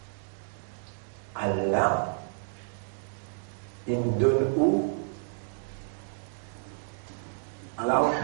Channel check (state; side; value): silent; left; 58 dB below the other